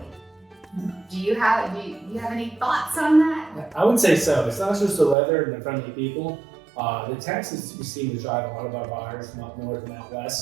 Do you have any thoughts on that? I would say so. It's not just the weather and the friendly people. The taxes seem to drive a lot of our buyers from up north and out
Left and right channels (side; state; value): left; drops out; at 5.2 s